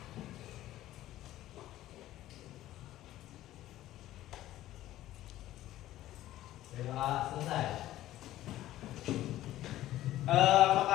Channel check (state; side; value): quieter; right; 14.4 dB